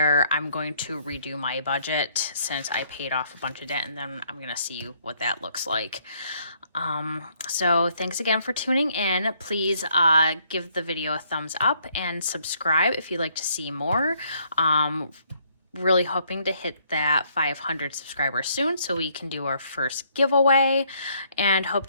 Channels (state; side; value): inverted; both; correlation -0.68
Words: I'm going to redo my budget since I paid off a bunch of debt, and then I'm gonna see what that looks like. So thanks again for tuning in. Please give the video a thumbs up and subscribe if you'd like to see more. Really hoping to hit that 500 subscribers soon so we can do our first giveaway, and hope